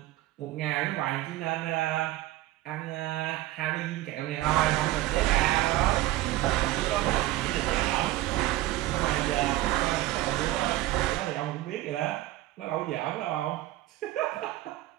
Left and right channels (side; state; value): left; quieter; 16.2 dB